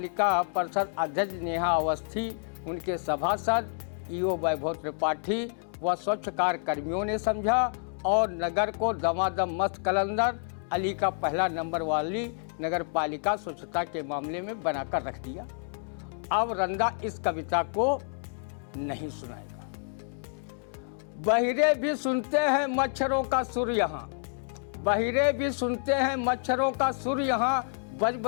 परिषद अध्यक्ष नेहा अवस्थी, उनके सभासद ईओ वैभव त्रिपाठी व स्वच्छकार कर्मियों ने समझा और नगर को दमादम मस्त कलंदर अली का पहला नंबर वाली नगर पालिका स्वच्छता के मामले में बनाकर रख दिया। अब रंदा इस कविता को नहीं सुनाएगा। बहिरे भी सुनते हैं मच्छरों का सुर यहाँ, बहिरे भी सुनते हैं मच्छरों का सुर यहाँ, बज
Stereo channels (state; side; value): silent; right; digital silence